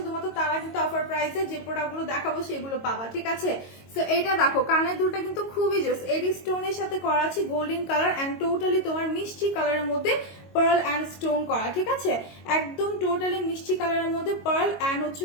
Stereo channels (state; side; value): late; right; 22 ms